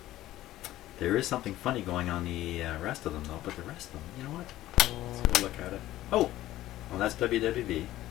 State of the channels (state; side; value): quieter; right; 14.9 dB